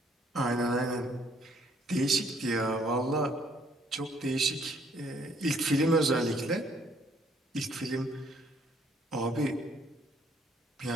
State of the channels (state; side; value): normal; both; correlation 0.65